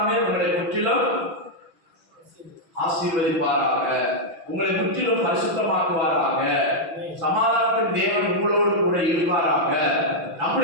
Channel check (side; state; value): left; late; 6.0 ms